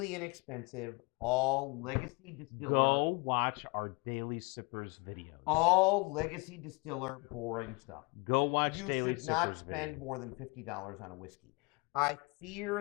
inexpensive, all legacy distiller. Go watch our Daily Sippers videos. All legacy distiller boring stuff. Go watch You Daily should not Sippers spend videos. more than $50 on a whiskey. I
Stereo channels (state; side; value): quieter; right; 28.4 dB